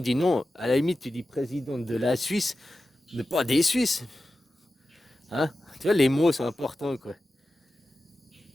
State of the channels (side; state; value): both; normal; correlation 0.93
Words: dit non. À la limite, tu dis président de la Suisse, mais pas des Suisses. Hein? Tu vois, les mots sont importants, quoi.